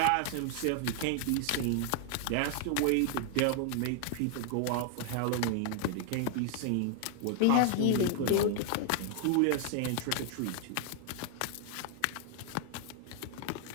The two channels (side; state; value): both; different; correlation 0.00